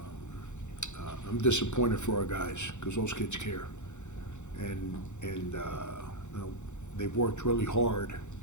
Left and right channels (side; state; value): right; late; 0.84 ms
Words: I'm disappointed for our guys because those kids care. And you know, they've worked really hard